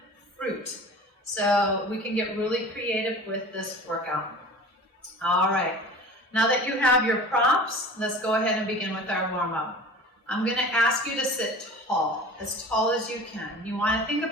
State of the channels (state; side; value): normal; both; correlation 0.39